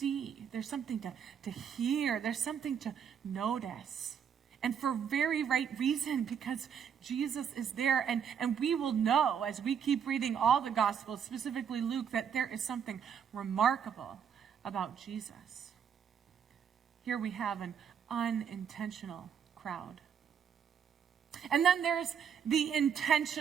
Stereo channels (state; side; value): quieter; left; 7.7 dB